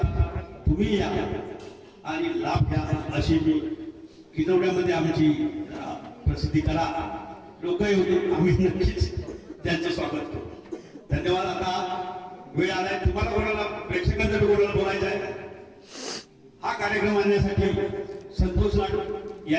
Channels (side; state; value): both; identical; correlation 1.00